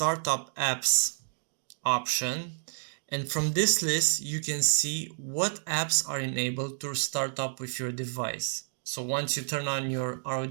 apps option, and from this list you can see what apps are enabled to start up with your device. So once you turn on your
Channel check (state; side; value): silent; left; digital silence